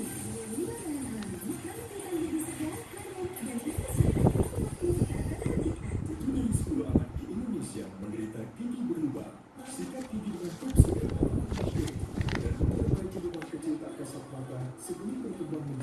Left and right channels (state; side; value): identical; both; correlation 1.00